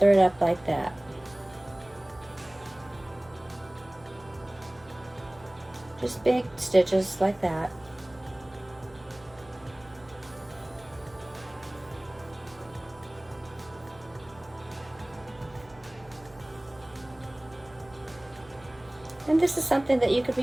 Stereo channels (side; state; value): right; noise; hum, 24 dB below the sound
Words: it up like that. Just big stitches like that. And this is something that you could be